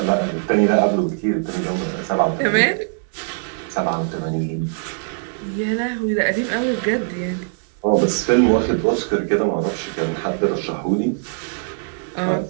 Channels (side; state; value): left; silent; 61 dB below the other